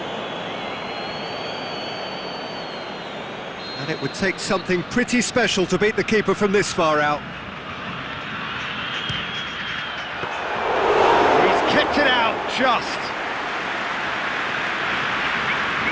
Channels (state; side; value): identical; both; correlation 1.00